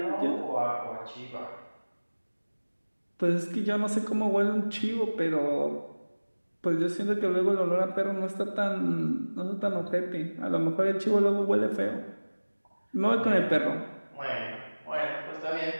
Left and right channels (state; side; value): inverted; both; correlation -1.00